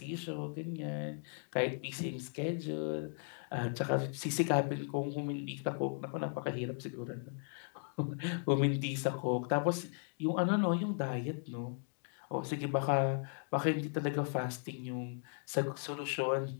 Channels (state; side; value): silent; right; 53 dB below the other